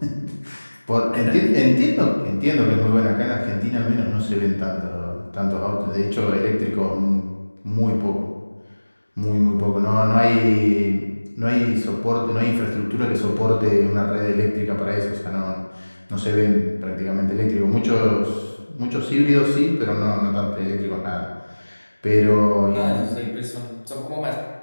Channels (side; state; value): both; inverted; correlation -1.00